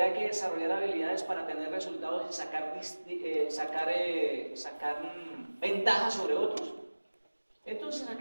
que desarrollar habilidades para tener resultados y sacar ventajas sobre otros. Entonces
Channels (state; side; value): inverted; both; correlation -1.00